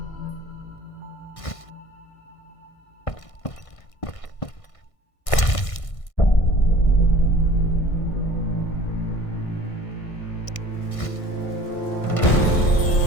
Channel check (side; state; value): right; late; 1.6 ms